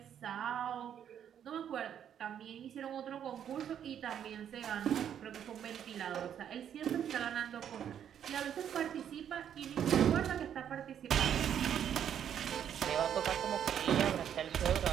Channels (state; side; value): quieter; left; 9.3 dB